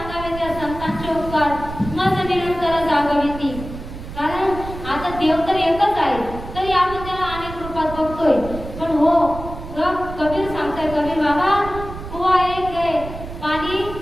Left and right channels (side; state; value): right; noise; rumble, 11 dB below the sound